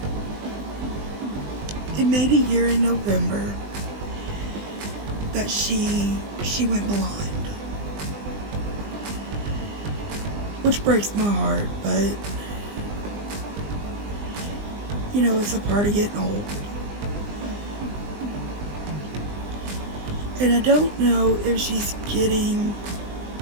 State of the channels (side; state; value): left; late; 20 ms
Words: it made a year in November that she went blind. which breaks my heart, but you know, it's a part of getting old. And I don't know if she's getting